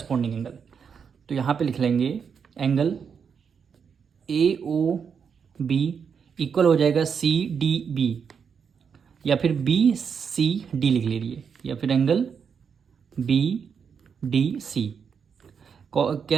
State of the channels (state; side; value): quieter; left; 6.7 dB